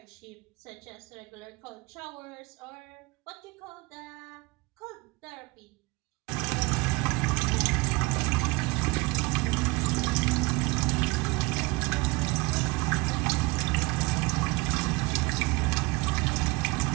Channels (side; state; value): left; quieter; 24.1 dB